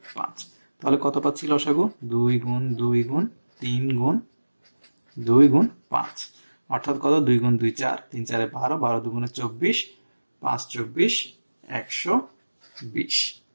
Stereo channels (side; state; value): both; inverted; correlation -1.00